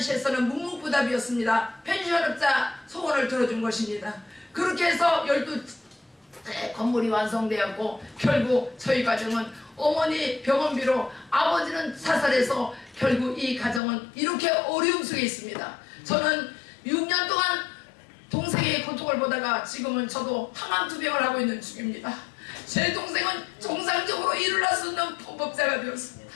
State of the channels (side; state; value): right; drops out; at 13.8 s